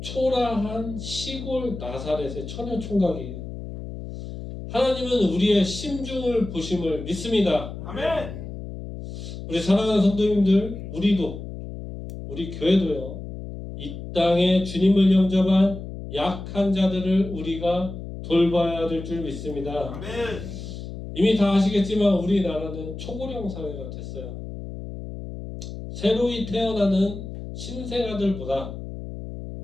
시골 나사렛의 처녀 총각이에요. 하나님은 우리의 심중을 보심을 믿습니다. 아멘. 우리 사랑하는 성도님들, 우리 교회도요. 이 땅에 주님을 영접한 약한 자들을 우리가 돌봐야 될 줄 믿습니다. 아멘. 이미 다 아시겠지만 우리나라는 초고령 사회가 됐어요. 새로이 태어나는 신생아들보다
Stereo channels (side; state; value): left; noise; hum, 9 dB below the sound